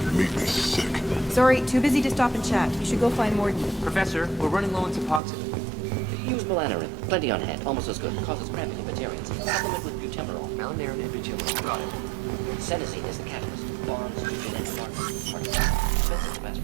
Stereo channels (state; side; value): drops out; left; at 5.2 s